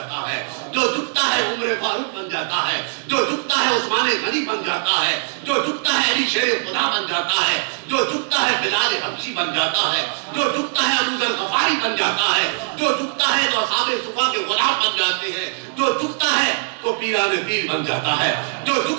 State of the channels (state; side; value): silent; left; digital silence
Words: ہے, جو جھکتا ہے عمر فاروق بن جاتا ہے, جو جھکتا ہے عثمان غنی بن جاتا ہے, جو جھکتا ہے علی شیر خدا بن جاتا ہے, جو جھکتا ہے بلال حبشی بن جاتا ہے, جو جھکتا ہے ابو ذر غفاری بن جاتا ہے, جو جھکتا ہے تو اصحاب صفا کے غلام بن جاتے ہیں, جو جھکتا ہے تو پیران پیر بن جاتا ہے, جو